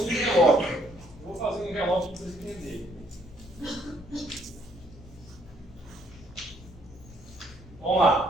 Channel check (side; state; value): left; noise; rumble, 19 dB below the sound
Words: envelope. Eu vou fazer um envelope para vocês entenderem. Vamos